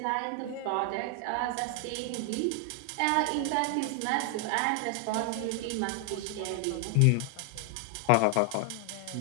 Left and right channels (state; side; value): different; both; correlation 0.00